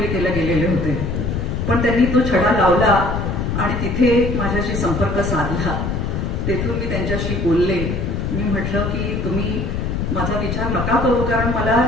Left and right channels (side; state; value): left; noise; rumble, 1 dB below the sound